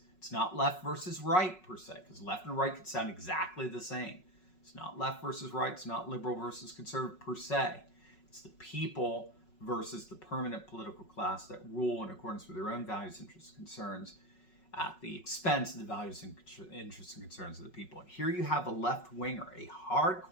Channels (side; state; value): right; late; 5.4 ms